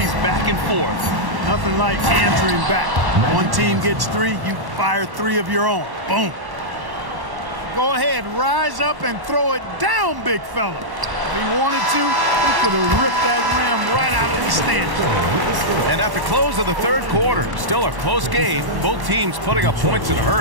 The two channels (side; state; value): left; late; 1.1 ms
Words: back and forth. Nothing like answering back. One team gets 3, you fire 3 of your own. Boom. Go ahead, rise up and throw it down, big fella. If he wanted to, he could have ripped that rim right out of the stand. And at the close of the third quarter, still a close game. Both teams putting up points in a